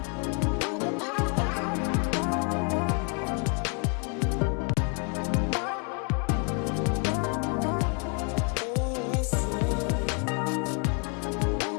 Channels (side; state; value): right; quieter; 36.1 dB